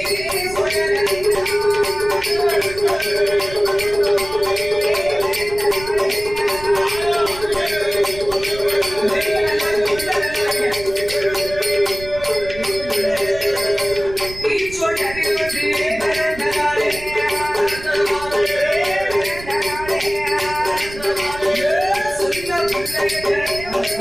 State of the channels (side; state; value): right; noise; rumble, 15 dB below the sound